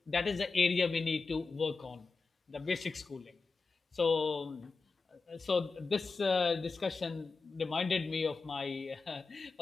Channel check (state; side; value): quieter; right; 4.2 dB